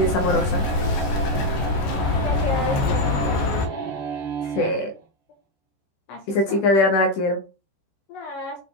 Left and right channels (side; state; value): right; late; 14 ms